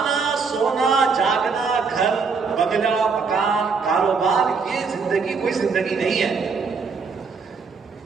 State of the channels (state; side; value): quieter; left; 5.1 dB